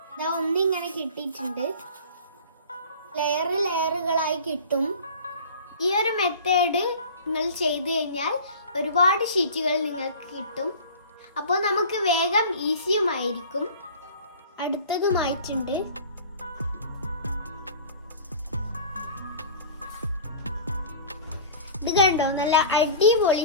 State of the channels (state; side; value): inverted; both; correlation -0.41